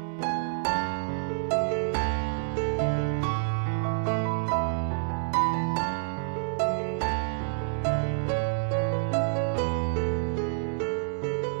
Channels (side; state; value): left; silent; 59 dB below the other